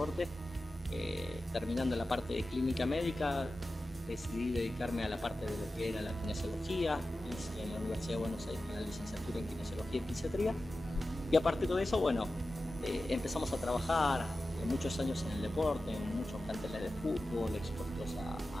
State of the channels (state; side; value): normal; both; correlation 0.94